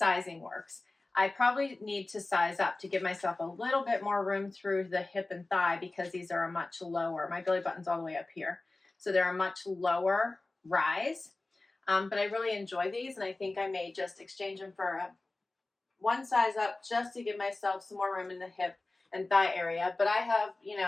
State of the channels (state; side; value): quieter; right; 3.1 dB